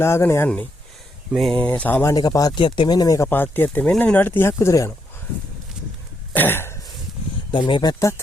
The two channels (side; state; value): both; normal; correlation 0.78